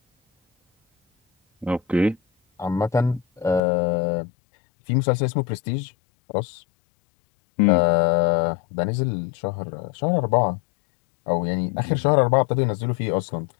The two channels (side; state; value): right; drops out; at 3.6 s